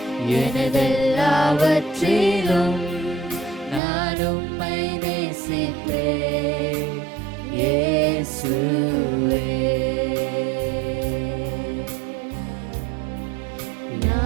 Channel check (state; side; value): drops out; left; at 3.8 s